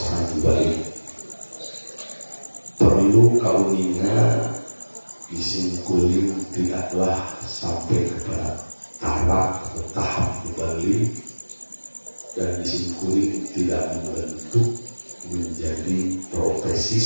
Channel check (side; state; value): both; inverted; correlation -1.00